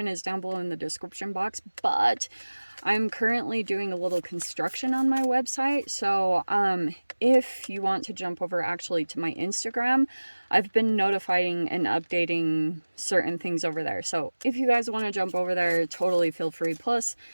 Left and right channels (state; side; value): inverted; both; correlation -1.00